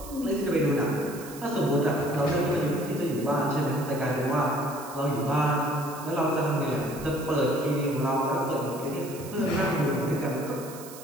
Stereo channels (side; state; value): right; noise; hiss, 16 dB below the sound